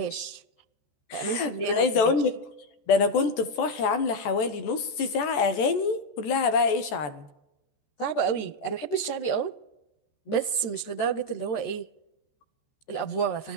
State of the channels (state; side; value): late; right; 14 ms